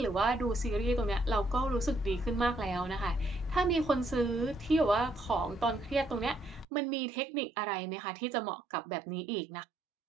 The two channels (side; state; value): left; drops out; at 6.7 s